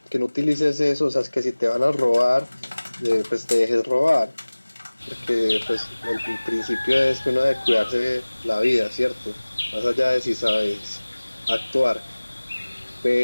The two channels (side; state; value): both; inverted; correlation -1.00